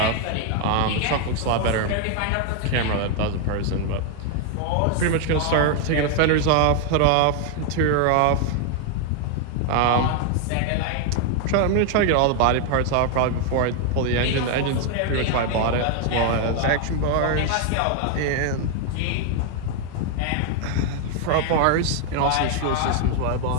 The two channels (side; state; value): both; different; correlation 0.00